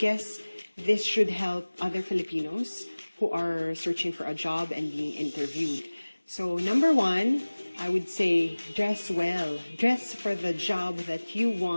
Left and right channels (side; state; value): both; inverted; correlation -1.00